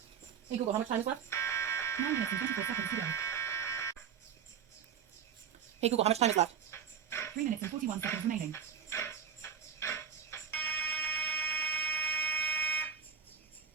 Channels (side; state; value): left; quieter; 7.4 dB